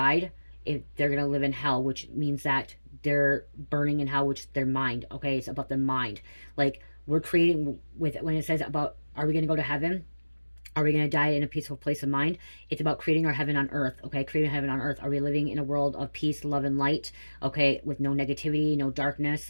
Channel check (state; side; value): inverted; both; correlation -1.00